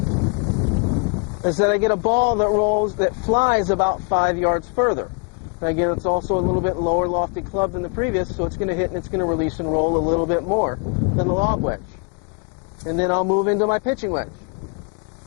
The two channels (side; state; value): right; quieter; 35.1 dB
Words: is that I get a ball that flies about 5 yards further. And again, it's also a little bit lower lofted club than the previous, so it's going to hit and it's going to release and roll a little bit more than the lob wedge. And then I'll move into my pitching wedge.